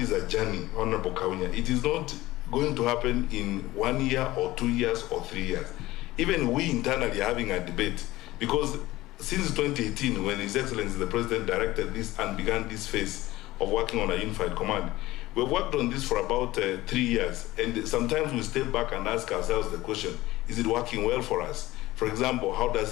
a journey, Honorable Kaunya. It is not going to happen in 1 year or 2 years or 3 years. Even we internally are having a debate, because since 2018, when His Excellency the President directed this and began this phase of working on a unified command, we've worked on this for about 3 years, and sometimes we step back and ask ourselves the question, is it working well for us? For example, how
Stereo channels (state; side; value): quieter; right; 17.7 dB